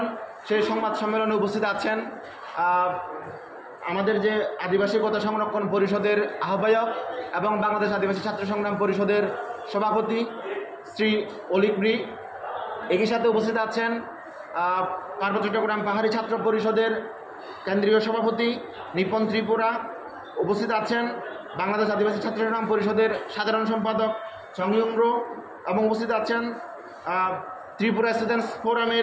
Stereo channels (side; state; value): both; identical; correlation 1.00